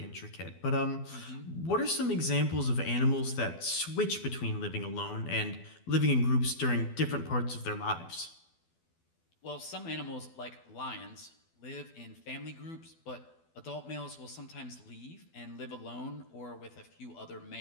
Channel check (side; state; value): right; late; 12 ms